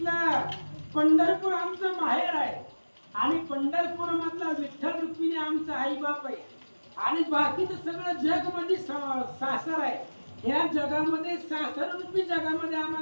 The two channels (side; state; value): both; inverted; correlation -1.00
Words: पंढरपूर आमचं माहेर आहे आणि पंढरपूर मधला विठ्ठल रुक्मिणी आमचा आई बाप आहे आणि बाकीचं सगळं जग मध्ये सासर आहे. या जगामध्ये सासर रूपी जगामध्ये